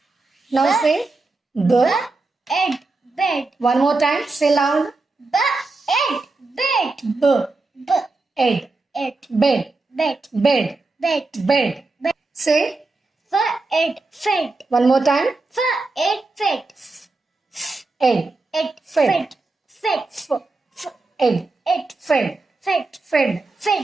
Now say, B. Ed. Bed. One more time. Say loud. B. Ed. Bed. B. B. Ed. Ed. Bed. Bed. Bed. Bed. Bed. Bed. Say, F. Ed. Fed. one more time. F. Ed. Fed. Ed. Ed. Fed. Fed. F. Ed. Ed. Fed. Fed. Fed.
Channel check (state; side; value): quieter; left; 3.4 dB